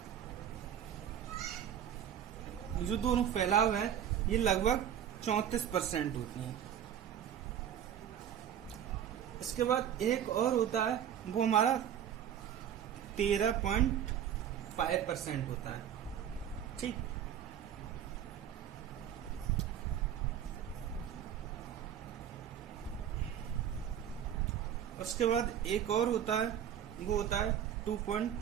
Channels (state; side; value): quieter; left; 9.6 dB